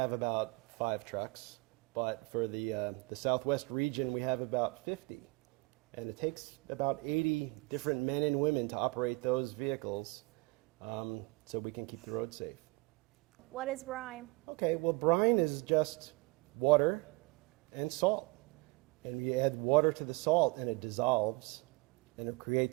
about 5 trucks, but for the Southwest region we have about 50. And it takes about 80 different men and women to operate those vehicles so we can keep the road safe. What is brine? Okay, well, brine is just water and salt. And you add water to the salt and it dissolves and it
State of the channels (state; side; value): quieter; left; 25.8 dB